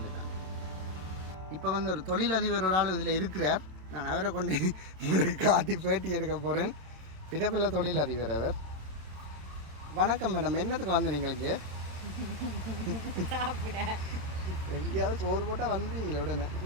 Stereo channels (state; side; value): late; left; 27 ms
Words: தான். இப்போ வந்து ஒரு தொழிலதிபர் ஒரு ஆள் இதில் இருக்கிறார். நான் அவரை கொண்டு உங்களுக்கு காட்டி பேட்டி எடுக்க போகிறேன். பிறப்பில்லை தொழிலதிபர் அவர். வணக்கம் மேடம், என்னத்துக்கு வந்து நீங்களுக்கு எங்கேயாவது சோறு போட்டால் வந்தீங்களே உடனே.